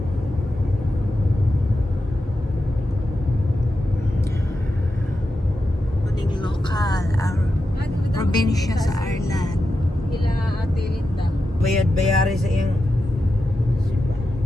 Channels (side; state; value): both; normal; correlation 0.89